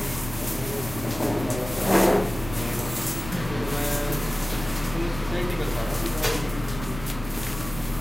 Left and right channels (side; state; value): left; noise; rumble, 11 dB below the sound